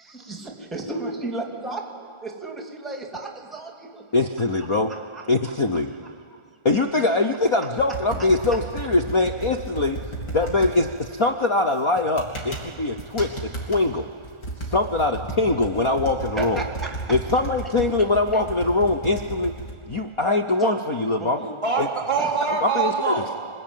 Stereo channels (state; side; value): late; right; 1.4 ms